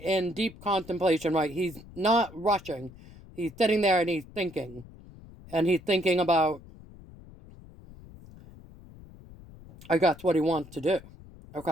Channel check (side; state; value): left; noise; rumble, 20 dB below the sound